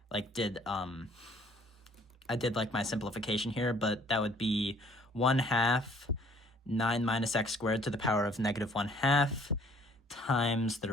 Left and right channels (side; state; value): both; normal; correlation 0.59